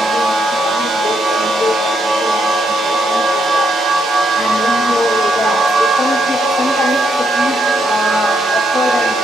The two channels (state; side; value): normal; both; correlation 0.77